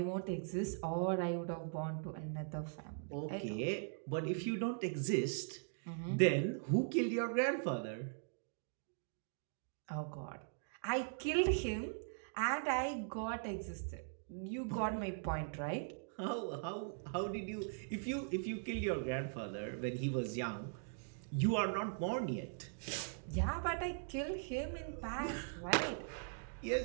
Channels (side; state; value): left; silent; digital silence